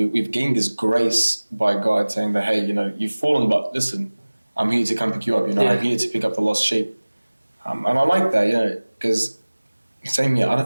gained this grace by God saying that hey, you've fallen, but listen, I'm here to come pick you up. I'm here to pick up the lost sheep. And I like that. Because same here. I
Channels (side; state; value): both; inverted; correlation -1.00